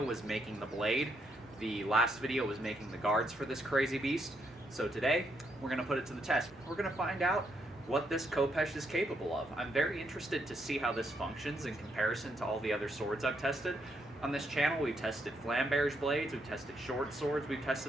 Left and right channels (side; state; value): both; normal; correlation 0.77